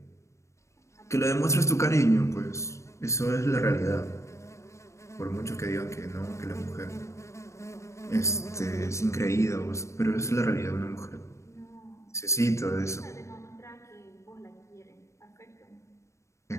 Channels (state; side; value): late; right; 0.14 ms